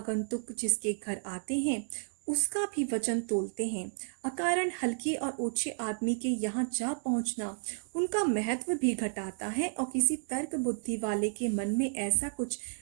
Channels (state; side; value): silent; left; digital silence